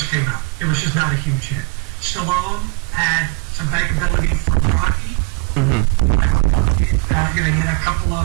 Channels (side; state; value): left; quieter; 30.9 dB